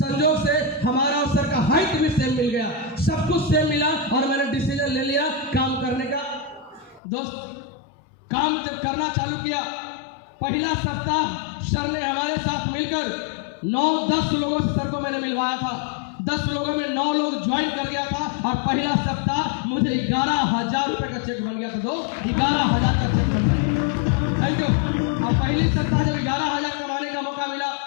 से हमारा और सर का हाइट भी सेम मिल गया, सब कुछ सेम मिला, और मैंने डिसीजन ले लिया काम करने का। दोस्त, काम जब करना चालू किया, पहला सप्ताह सर ने हमारे साथ मिलकर 9-10 लोगों से सर को मैंने मिलवाया था। 10 लोगों में 9 लोग ज्वाइन कर गया था, और पहला सप्ताह मुझे 11,000 रुपए का चेक बन गया था। दोस्त, 11,000 का चेक बन गया। Thank you. और पहली सप्ताह जब 11,000 कमाने का मौका मिला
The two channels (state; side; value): drops out; right; at 7.0 s